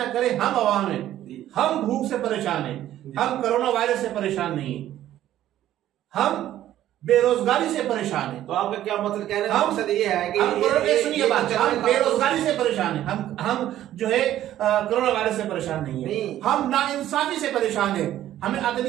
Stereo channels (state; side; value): quieter; left; 12.7 dB